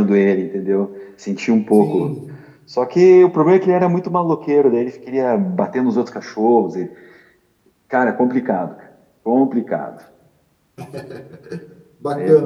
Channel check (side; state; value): both; identical; correlation 1.00